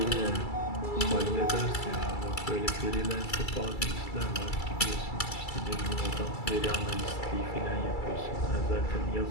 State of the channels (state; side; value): late; right; 2.3 ms